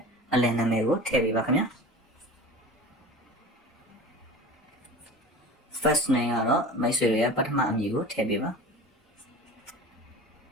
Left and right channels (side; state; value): both; normal; correlation 0.36